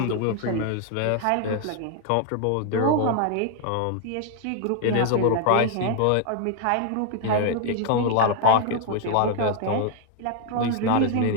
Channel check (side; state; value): both; different; correlation 0.00